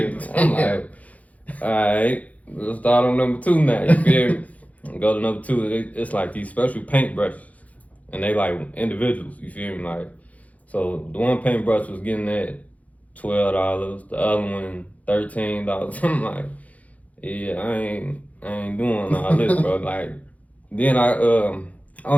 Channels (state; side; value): late; right; 0.070 ms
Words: I'm like, all right, let's start on number 2 now. You feel me? Go to number 2. It's like these special paint brushes, and they like individuals. You feel me? Like, so the one paintbrush was getting at $12. The other one $13. I'm like, yeah, I ain't doing all this, bro. Like, then